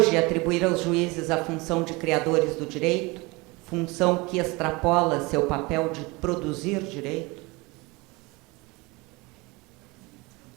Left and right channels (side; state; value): left; quieter; 24.8 dB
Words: atribuir aos juízes a função de criadores do direito, função que extrapola seu papel de produzir direito?